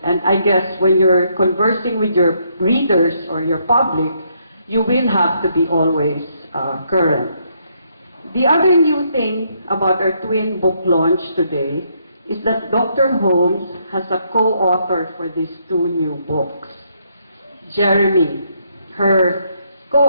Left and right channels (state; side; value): inverted; both; correlation -0.73